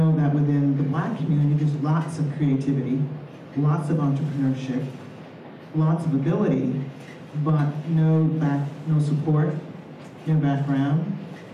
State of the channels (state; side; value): identical; both; correlation 1.00